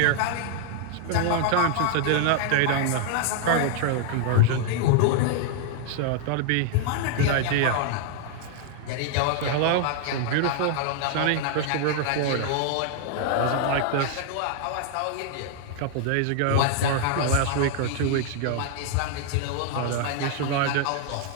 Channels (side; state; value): both; different; correlation 0.00